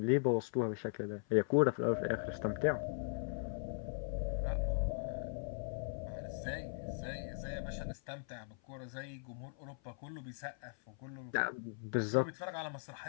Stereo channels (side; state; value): right; silent; 52 dB below the other